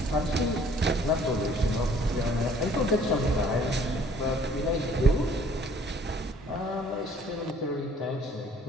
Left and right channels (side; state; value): both; normal; correlation 0.57